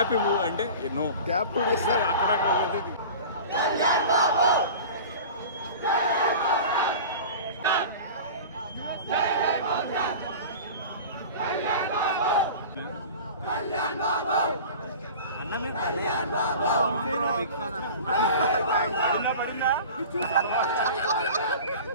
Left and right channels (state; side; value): inverted; both; correlation -0.37